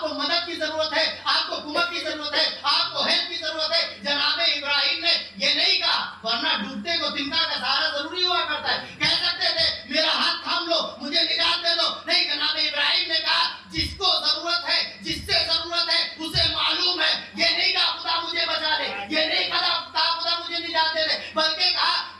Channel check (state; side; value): identical; both; correlation 1.00